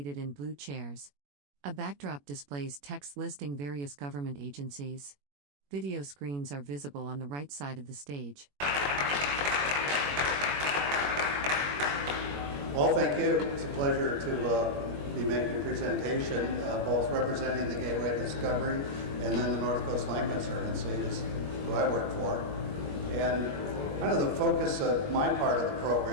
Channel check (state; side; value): late; left; 21 ms